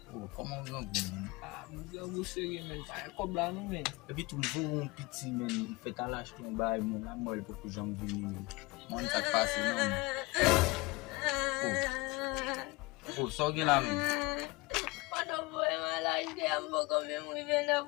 Oh, comment on va men? M'gè gou seri men. Pa kob la nou men. Et puis tout le monde petit men, fait à lâche ton bail mon la molle pour que j'en vini men. Mon ça passe non. Oh, so gen la men.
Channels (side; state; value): right; quieter; 23.9 dB